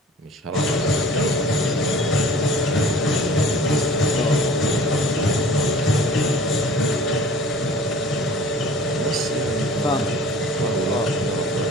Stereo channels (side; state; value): both; normal; correlation 0.47